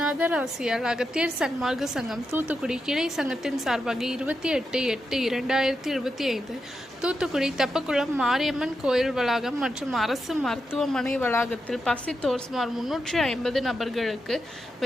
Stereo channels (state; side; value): normal; both; correlation 0.86